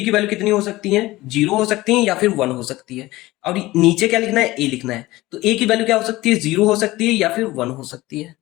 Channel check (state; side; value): quieter; right; 18.6 dB